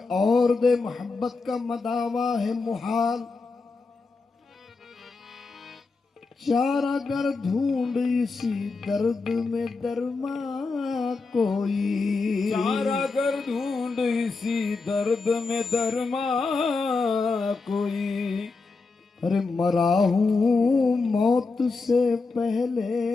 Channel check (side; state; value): right; quieter; 4.1 dB